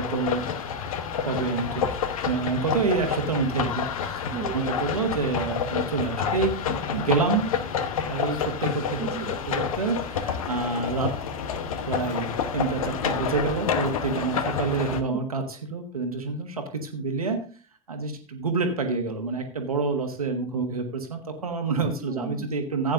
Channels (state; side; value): normal; both; correlation -0.04